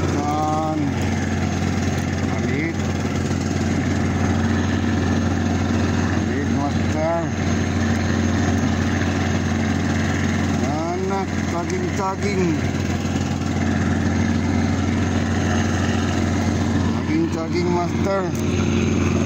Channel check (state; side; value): identical; both; correlation 1.00